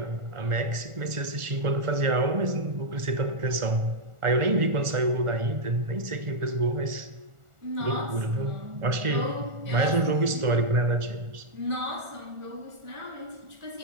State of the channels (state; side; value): late; left; 1.4 ms